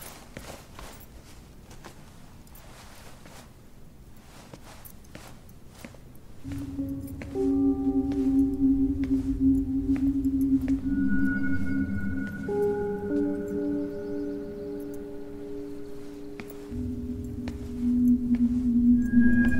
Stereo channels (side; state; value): both; identical; correlation 1.00